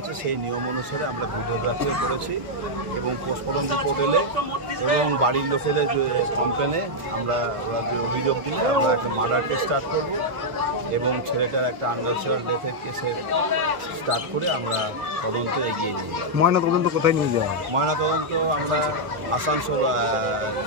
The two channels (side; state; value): left; late; 1.3 ms